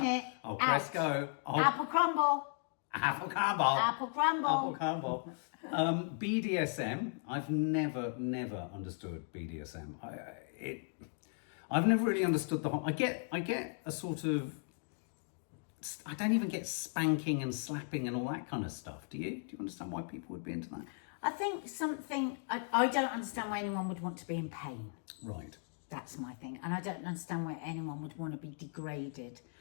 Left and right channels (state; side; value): silent; right; 53 dB below the other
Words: it. I'll press Out. go. Apple crumble. Apple crumble. Apple crumble. Apple crumble. BDSM. I've never understood BDSM. I've never really understood the whole. I get a sort of. I don't even get spanking and slapping and all that kind of stuff. Do you? Do you understand why people would be into that? I think I don't understand why anyone would want to be in pain. Right. That's my thing. And I don't understand why anyone would want to be degraded.